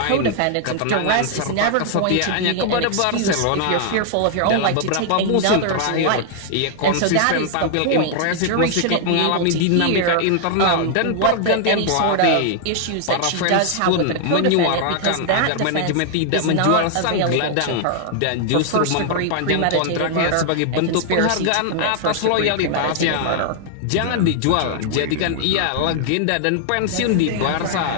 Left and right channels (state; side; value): different; both; correlation 0.00